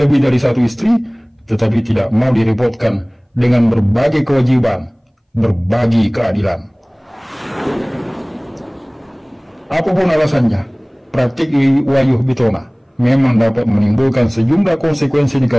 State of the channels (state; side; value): identical; both; correlation 1.00